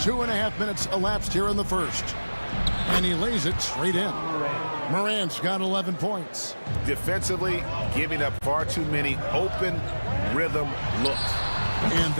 minutes elapsed here in the first. And he lays it straight in. Morant's got 11 points. Defensively, giving up far too many open rhythm looks. And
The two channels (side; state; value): both; inverted; correlation -1.00